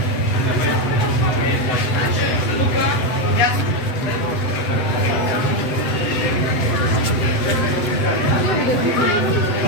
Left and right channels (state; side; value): late; right; 7.9 ms